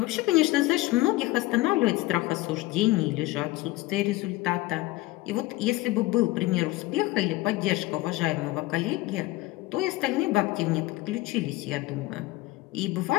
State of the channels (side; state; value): right; quieter; 19.2 dB